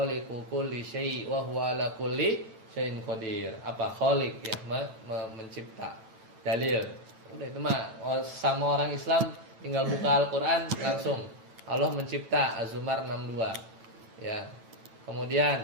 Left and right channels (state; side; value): late; left; 9.1 ms